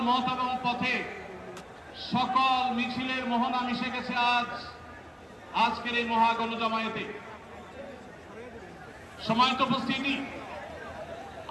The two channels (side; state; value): both; identical; correlation 1.00